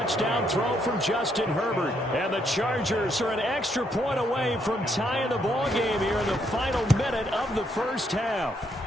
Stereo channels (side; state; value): both; normal; correlation 0.74